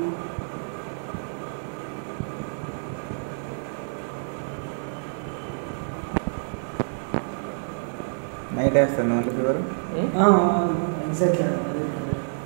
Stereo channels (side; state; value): left; silent; digital silence